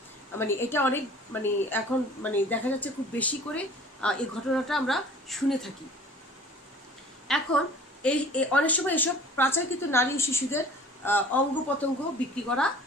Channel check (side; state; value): both; normal; correlation 0.47